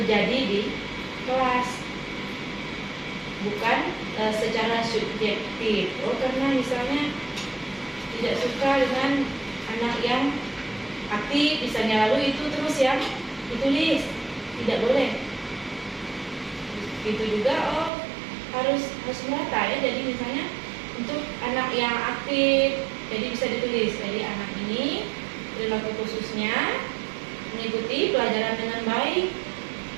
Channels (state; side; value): drops out; left; at 17.9 s